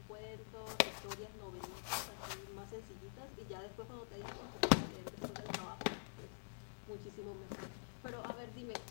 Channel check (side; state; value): right; silent; digital silence